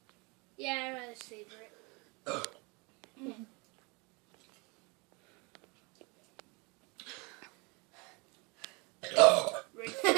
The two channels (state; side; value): quieter; left; 29.3 dB